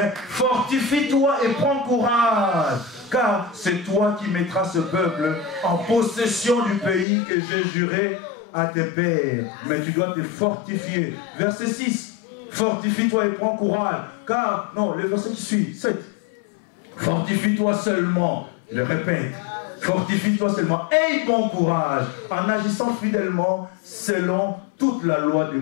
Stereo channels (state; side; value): drops out; right; at 7.1 s